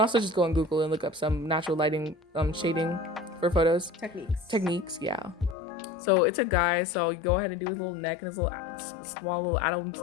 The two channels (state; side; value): drops out; right; at 5.6 s